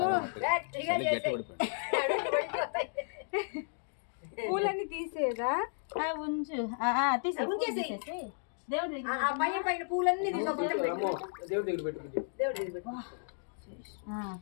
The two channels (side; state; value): right; silent; digital silence